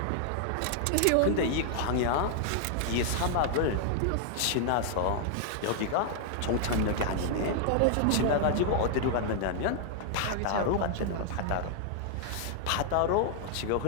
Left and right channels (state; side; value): different; both; correlation 0.00